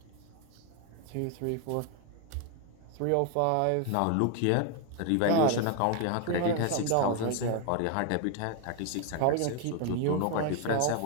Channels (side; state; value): both; different; correlation 0.01